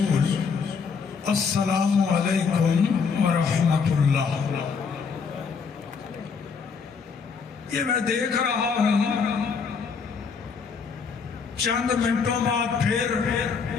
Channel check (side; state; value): right; quieter; 5.6 dB